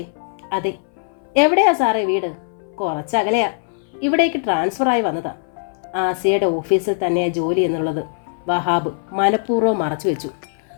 അതെ. എവിടെയാ സാറേ വീട്? കുറച്ചകലെയാ. ഇവിടേക്ക് ട്രാൻസ്ഫറായി വന്നതാ. ആസിയയുടെ ഓഫീസിൽ തന്നെയാ ജോലി എന്നുള്ളത് വഹാബ് മനഃപൂർവ്വം മറച്ചു വെച്ചു.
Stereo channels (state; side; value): silent; right; 62 dB below the other